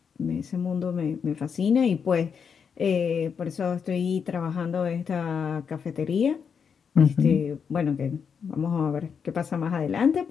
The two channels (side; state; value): right; quieter; 6.6 dB